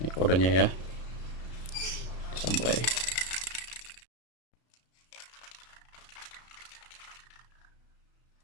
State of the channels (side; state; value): right; late; 33 ms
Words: kodenya ya. Samurai.